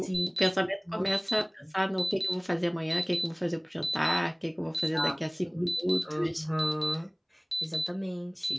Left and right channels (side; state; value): both; identical; correlation 1.00